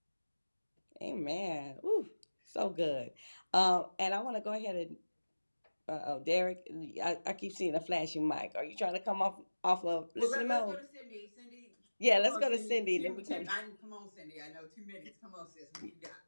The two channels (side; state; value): both; inverted; correlation -1.00